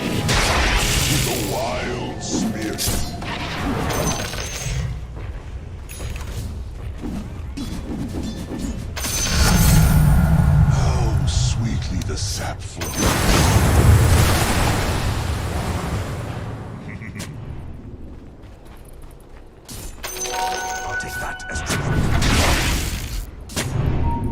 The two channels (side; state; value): both; identical; correlation 1.00